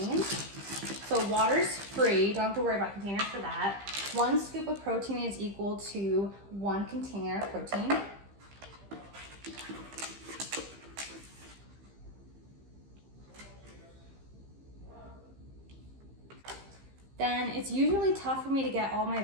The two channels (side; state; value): left; late; 15 ms